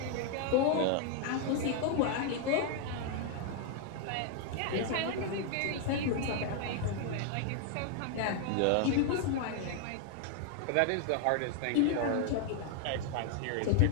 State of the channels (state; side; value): different; both; correlation 0.00